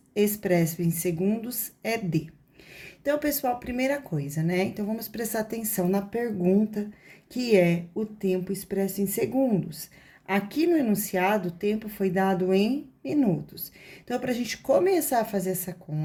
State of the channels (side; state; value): both; identical; correlation 1.00